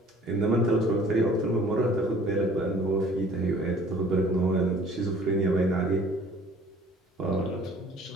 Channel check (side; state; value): both; normal; correlation 0.53